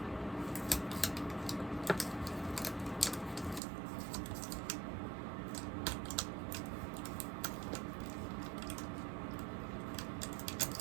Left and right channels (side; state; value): left; drops out; at 3.6 s